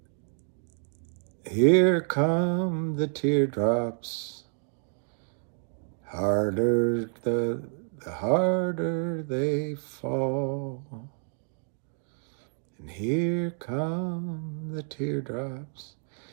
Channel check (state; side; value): silent; left; 57 dB below the other